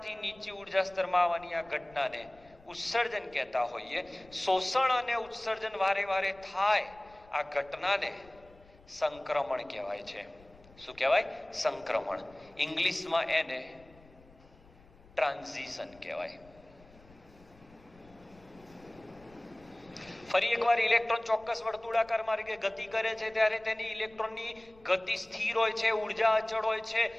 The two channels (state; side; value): noise; left; rumble, 26 dB below the sound